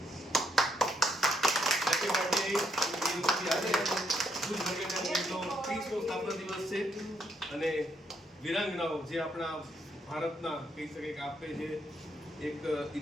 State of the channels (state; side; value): normal; both; correlation 0.74